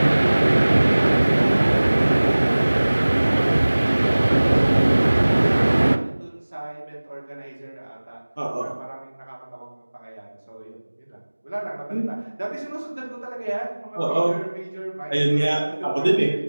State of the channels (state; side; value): inverted; both; correlation -1.00